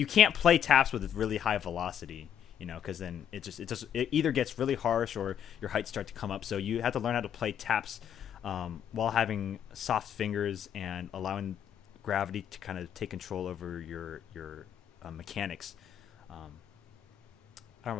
can't play taps with really high velocity, because then it either gets really harsh or your heights start to come up. So you have to learn how to play taps while having soft fingers and allowing gravity to kind of take control over your mechanics. I don't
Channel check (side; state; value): right; quieter; 9.3 dB